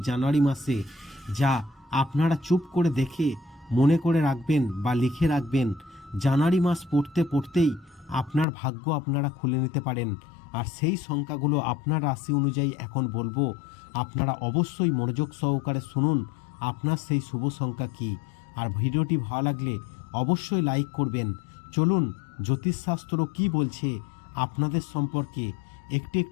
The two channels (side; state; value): right; drops out; at 8.5 s